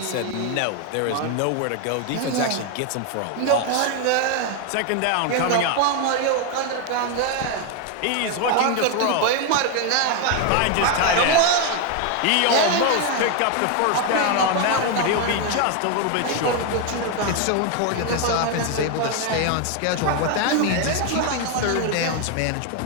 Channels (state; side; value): different; both; correlation 0.01